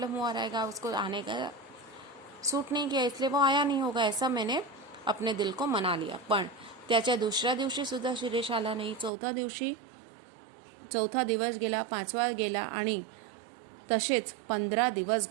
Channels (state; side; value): drops out; left; at 9.1 s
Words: हुआ रहेगा, उसको आने का सूट नहीं किया इसलिए वो आया नहीं होगा, ऐसा मैंने अपने दिल को मना लिया. पण त्याच्या दुसऱ्या दिवशी सुद्धा शिरीष आला नाही. चौथा दिवस गेला, 5वां गेला आणि तसेच 15 दिवस